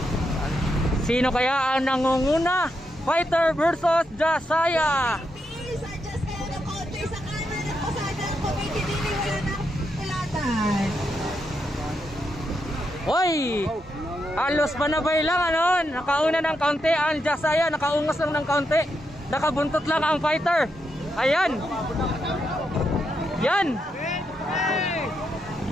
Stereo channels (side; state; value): both; normal; correlation 0.82